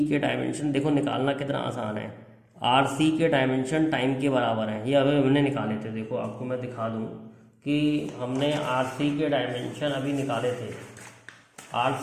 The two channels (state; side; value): identical; both; correlation 1.00